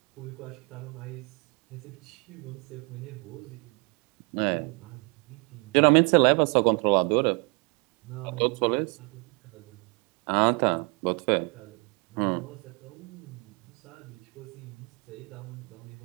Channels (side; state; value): left; quieter; 33.2 dB